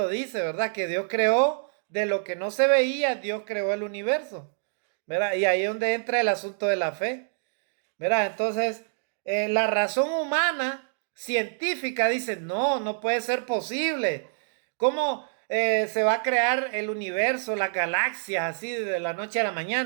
dice, ¿verdad? Que Dios creó de lo que no se veía, Dios creó el universo, ¿verdad? Y ahí es donde entra el asunto de la fe, ¿verdad? Entonces, la razón humana científica dice, no, no puede ser posible. ¿Cómo se va a crear el universo, las galaxias, así de la noche a la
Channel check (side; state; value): left; silent; digital silence